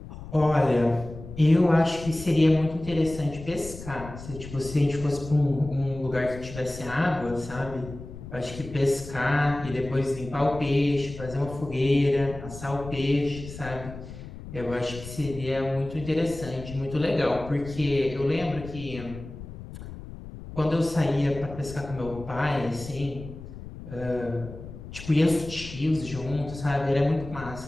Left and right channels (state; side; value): noise; left; rumble, 13 dB below the sound